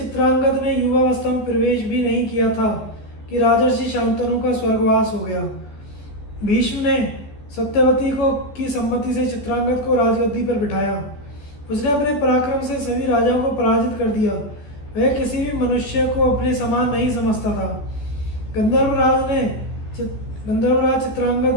ने युवावस्था में प्रवेश भी नहीं किया था कि राजर्षि शांतनु का स्वर्गवास हो गया। भीष्म ने सत्यवती को की सम्मति से चित्रांगद को राजगद्दी पर बिठाया। उसने अपने पराक्रम से सभी राजाओं को पराजित कर दिया। वह किसी भी मनुष्य को अपने समान नहीं समझता था। गंधर्वराज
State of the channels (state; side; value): late; right; 14 ms